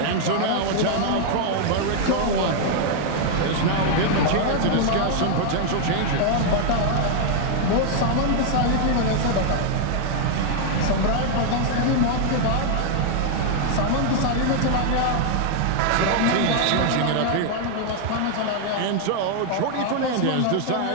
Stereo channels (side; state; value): both; different; correlation 0.00